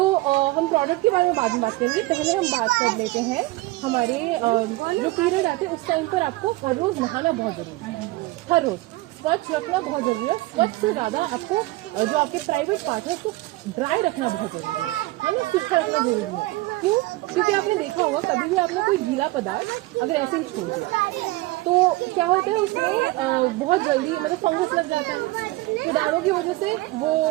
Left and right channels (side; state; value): left; quieter; 20.1 dB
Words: हम प्रोडक्ट के बारे में बाद में बात करेंगे, पहले हम बात कर लेते हैं हमारे जो पीरियड आते हैं उस टाइम पर आपको हर रोज नहाना बहुत जरूरी है, हर रोज स्वच्छ रखना बहुत जरूरी है। स्वच्छ से ज्यादा आपको जो आपके प्राइवेट पार्ट है उसको ड्राई रखना बहुत जरूरी है ना, सूखा रखना जरूरी है। क्यों? क्योंकि आपने देखा होगा कभी भी आपने कोई गीला पदार्थ अगर ऐसे ही छोड़ दिया तो क्या होता है उसमें बहुत जल्दी मतलब फंगस लग जाता है, कीटाणु की वजह से वो